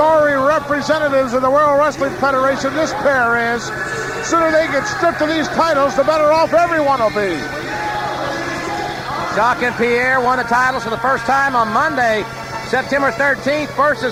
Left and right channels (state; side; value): identical; both; correlation 1.00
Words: representatives of the World Wrestling Federation this pair is. The sooner they get stripped of these titles, the better off everyone will be. Jacques and Pierre won the titles for the first time on Monday, September 13th,